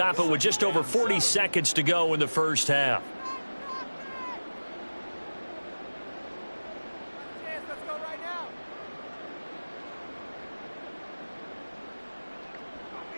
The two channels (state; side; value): inverted; both; correlation -1.00